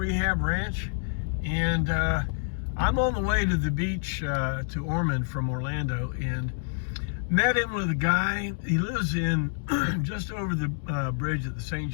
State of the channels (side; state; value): right; silent; digital silence